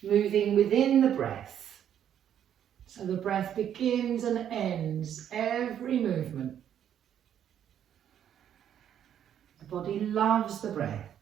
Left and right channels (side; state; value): left; quieter; 9.7 dB